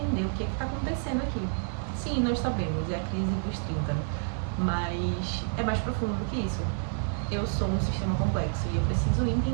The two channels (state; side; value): silent; left; 57 dB below the other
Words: o que tá acontecendo aqui. Sim, nós sabemos, é a crise dos 30, mas é mais profundo do que isso. Eu sou um sistema complexo e eu preciso